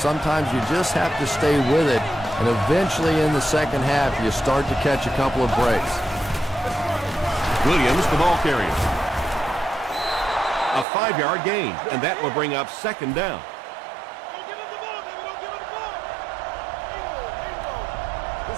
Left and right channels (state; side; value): drops out; left; at 10.9 s